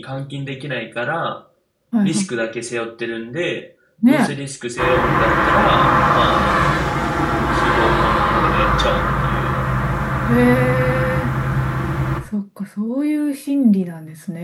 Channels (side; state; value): both; identical; correlation 1.00